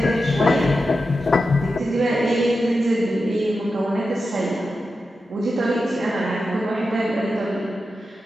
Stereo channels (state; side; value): normal; both; correlation 0.90